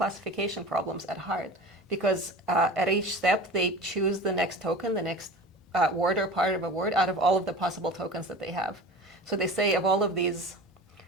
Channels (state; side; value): normal; both; correlation 0.35